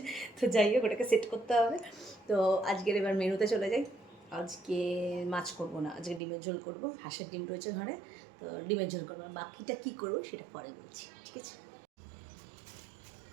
তো যাই হোক, ওটাকে সেট করতে হবে। তো আজকের এবার মেনুতে চলে যাই। আজকে মাছ করবো না, আজকে ডিমের ঝোল করবো। হাঁসের ডিম রয়েছে ঘরে, তো ডিমের ঝোল করবো। বাকিটা কী করবো সেটা পরে বলছি, ঠিক আছে।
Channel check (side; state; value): left; drops out; at 6.2 s